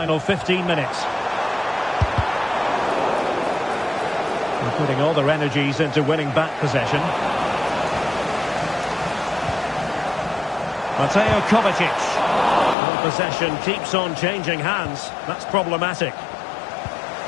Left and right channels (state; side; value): drops out; right; at 12.8 s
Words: 15 minutes. They're putting all their energies into winning back possession. Mateo Kovacic. Well, possession keeps on changing hands. That's problematic.